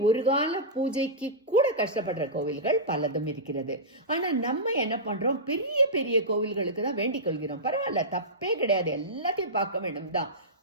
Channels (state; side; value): normal; both; correlation -0.15